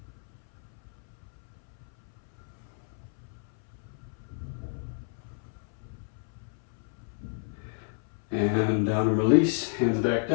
And down and release, hands back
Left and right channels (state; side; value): silent; right; 57 dB below the other